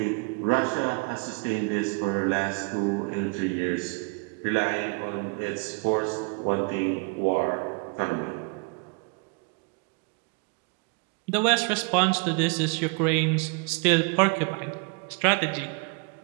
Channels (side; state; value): left; quieter; 32.6 dB